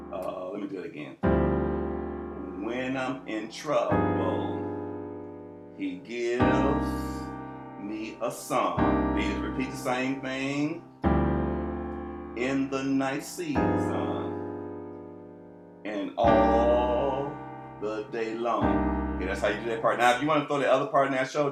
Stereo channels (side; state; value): both; identical; correlation 1.00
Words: me do it again. When I'm in trouble, he gives me a song. Then you repeat the same thing. In the night season and all the day long. Okay, that's how you do that part. Now, if you want to throw the other part in there I